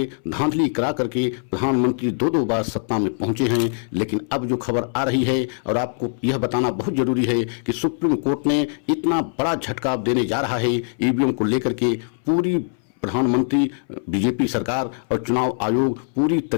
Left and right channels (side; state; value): right; silent; 63 dB below the other